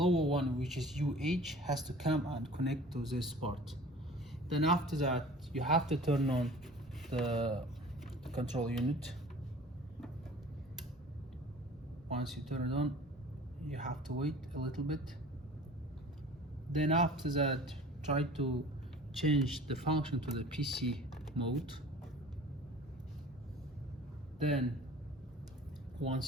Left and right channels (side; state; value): both; normal; correlation 0.44